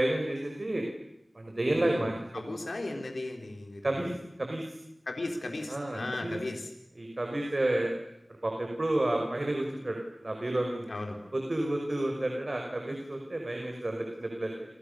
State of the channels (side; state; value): both; normal; correlation 0.98